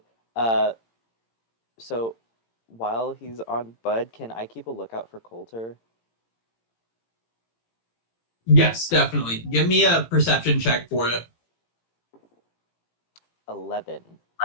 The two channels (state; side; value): late; right; 18 ms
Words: So while he's on Bud, can I keep a lookout for Coulter? Yes, definitely. Give me a perception check for it. 11.